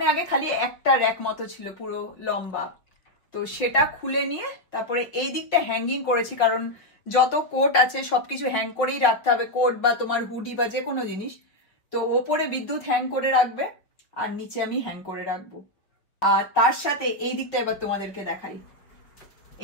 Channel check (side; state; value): right; late; 5.0 ms